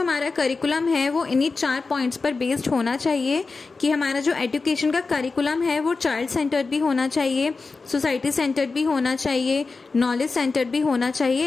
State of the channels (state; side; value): quieter; right; 4.1 dB